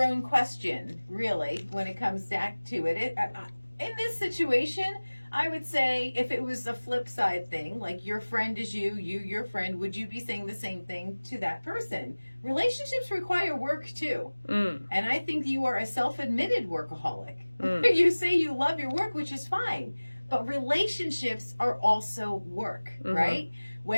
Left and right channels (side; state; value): both; inverted; correlation -1.00